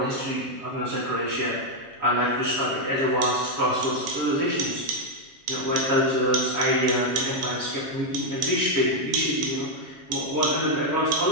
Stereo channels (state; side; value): late; left; 7.3 ms